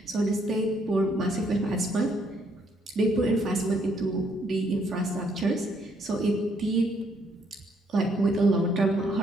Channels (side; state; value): both; normal; correlation 0.70